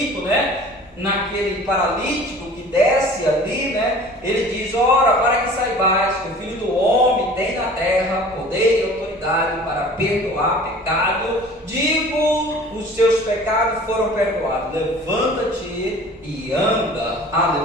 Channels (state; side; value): normal; both; correlation 0.45